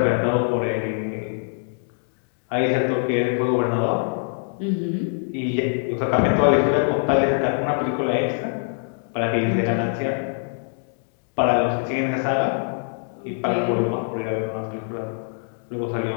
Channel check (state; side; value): silent; right; 58 dB below the other